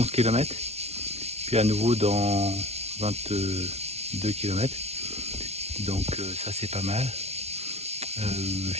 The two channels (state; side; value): late; left; 0.31 ms